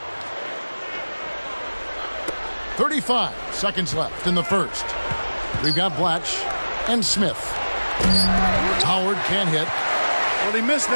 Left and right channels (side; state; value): both; inverted; correlation -1.00